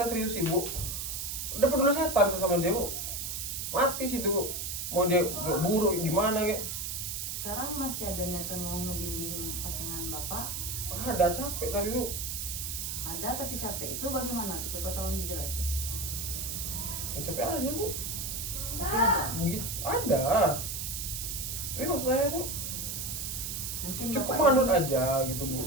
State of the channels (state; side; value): noise; right; hiss, 4 dB below the sound